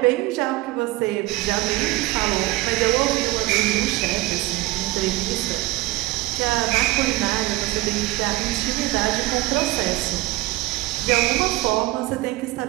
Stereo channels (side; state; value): left; quieter; 19.1 dB